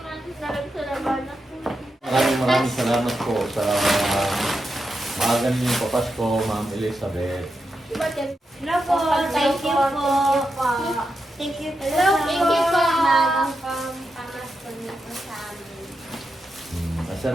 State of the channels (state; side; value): normal; both; correlation 0.87